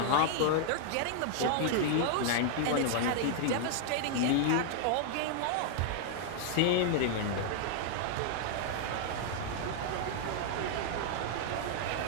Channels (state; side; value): different; both; correlation -0.01